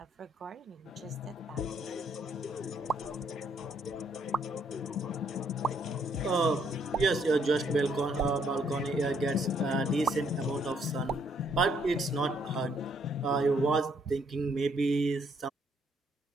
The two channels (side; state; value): both; normal; correlation 0.70